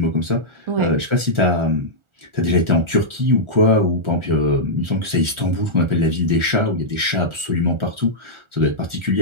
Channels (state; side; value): late; left; 1.4 ms